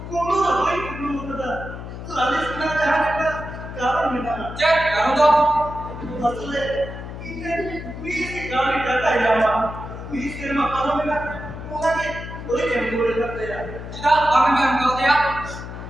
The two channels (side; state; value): left; noise; hum, 10 dB below the sound